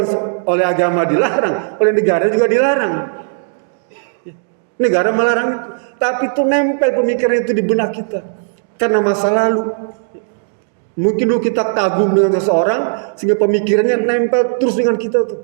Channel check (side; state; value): left; silent; digital silence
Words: oleh agama dilarang, oleh negara juga dilarang. Negara melarang itu, tapi itu nempel pemikiran itu di benak kita karena masa lalu. Mungkin dulu kita kagum dengan seseorang sehingga pemikirannya nempel terus dengan kita tuh.